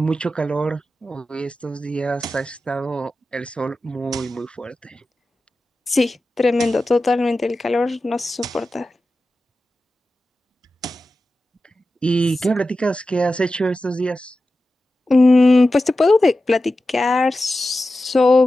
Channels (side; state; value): both; normal; correlation 0.93